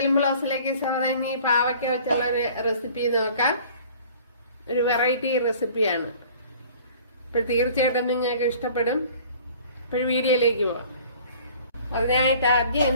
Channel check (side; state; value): both; inverted; correlation -0.50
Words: ബ്ലോഗ്സിലേക്ക് സ്വാഗതം. ഇനി പാവയ്ക്ക വെച്ചുള്ള ഒരു റെസിപ്പി നോക്കാം. ഒരു വെറൈറ്റി റെസിപ്പിയാണ്. അപ്പോൾ തീർച്ചയായിട്ടും നിങ്ങൾക്ക് ഇഷ്ടപ്പെടും. ഇപ്പോൾ വീഡിയോയിലേക്ക് പോവാം. അതിനായിട്ട് ആദ്യം